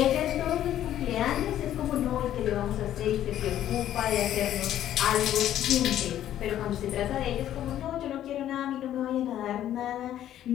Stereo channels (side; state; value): right; quieter; 11.7 dB